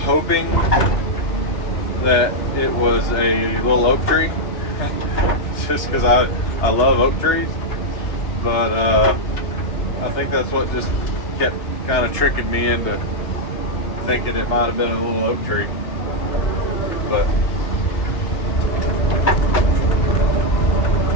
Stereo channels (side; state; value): right; late; 2.9 ms